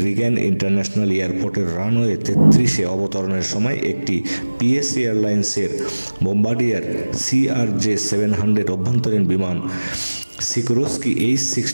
রিগ্যান ইন্টারন্যাশনাল এয়ারপোর্টের রানওয়ে 33-এ অবতরণের সময় একটি পিএস এয়ারলাইন্সের বোম্বার্ডিয়ার CRJ-700 অভ্যন্তরীণ বিমান সিকোরস্কি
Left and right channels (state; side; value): inverted; both; correlation -1.00